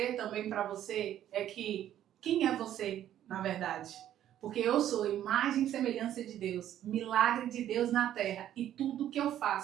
também para você é que quem é você, na verdade? Porque eu sou imagem e semelhança de Deus, milagre de Deus na terra e tudo que eu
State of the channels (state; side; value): quieter; left; 11.5 dB